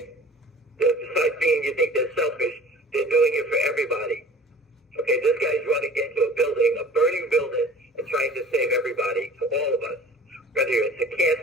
Besides being, you think they're selfish, they're doing it for everybody. Okay, this guy's running into a building, a burning building, and trying to save everybody, to all of us. Whether it's a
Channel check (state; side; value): normal; both; correlation 0.45